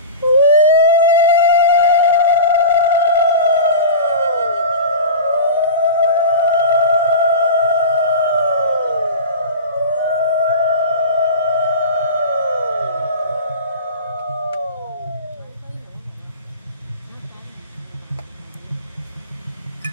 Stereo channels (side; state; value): both; inverted; correlation -0.32